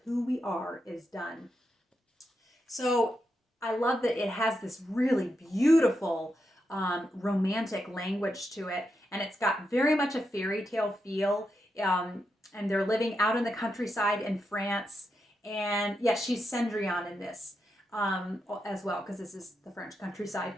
who we are is done. So I love that it has this really beautiful romantic language to it, and it's got very much a fairy tale feel. And they're living out in the countryside in France. And yes, she's Cendrillon in this as well, because this is the French countryside.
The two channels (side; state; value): both; normal; correlation 0.85